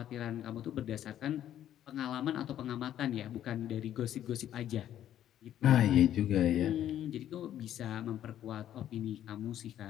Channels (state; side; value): quieter; right; 11.3 dB